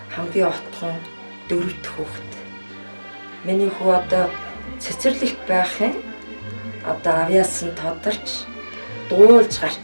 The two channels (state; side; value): inverted; both; correlation -1.00